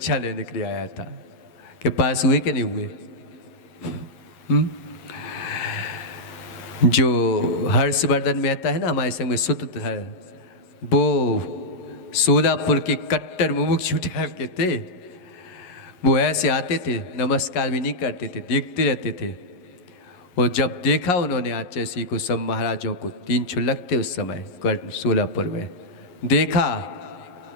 लेने के लिए आया था। कि पास हुए कि नहीं हुए? जो हर्षवर्धन मेहता है ना हमारे संग में सूत्र है, वो सोलापुर के कट्टर मुमुक्षु टाइप के थे। वो ऐसे आते थे, नमस्कार भी नहीं करते थे, देखते रहते थे। और जब देखा उन्होंने आचार्य को, सब महाराजों को, 3 छुलक थे उस समय सोलापुर में, देखा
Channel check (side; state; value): right; late; 11 ms